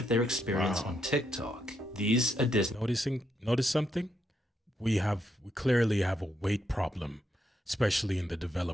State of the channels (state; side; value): normal; both; correlation 0.79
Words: of their experience on TikTok. These are Disney. Notice something? We clearly have a weight problem, especially in the